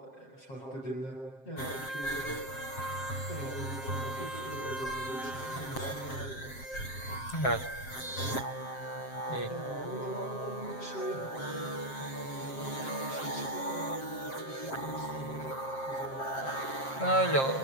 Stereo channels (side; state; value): right; late; 7.5 ms